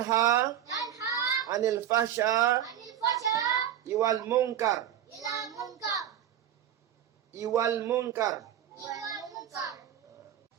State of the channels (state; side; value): quieter; left; 10.5 dB